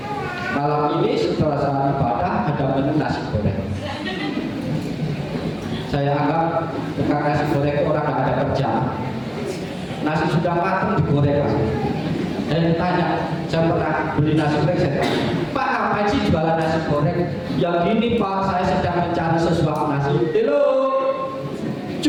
Malam ini setelah saat ibadah ada menu nasi goreng. Saya anggap tukang nasi goreng orang nggak ada kerjaan. Nasi sudah matang digoreng. Dan tanya, saya pernah beli nasi goreng, saya tanya, Pak, apa ngapain sih jualan nasi goreng? Ya gini Pak, saya sedang mencari sesuap nasi. Halo,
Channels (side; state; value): both; identical; correlation 1.00